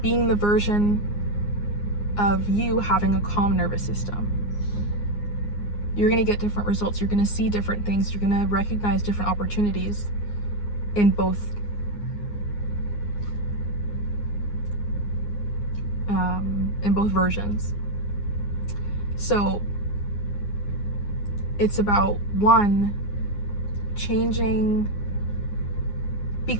being the version of you having a calm nervous system. You're going to get different results. You're going to see different things. You're going to recognize different opportunities in both versions. So it's about, one,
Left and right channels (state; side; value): late; right; 9.7 ms